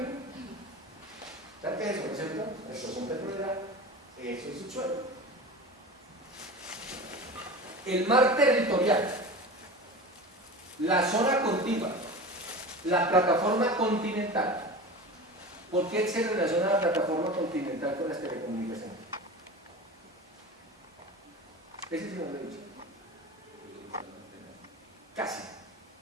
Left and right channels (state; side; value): normal; both; correlation 0.32